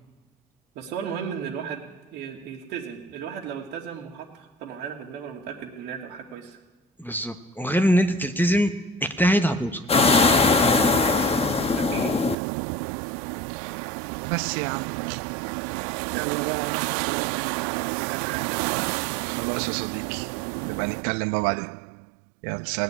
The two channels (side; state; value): left; drops out; at 12.4 s